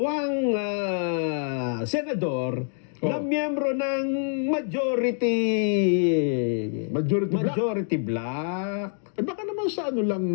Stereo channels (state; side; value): silent; right; 61 dB below the other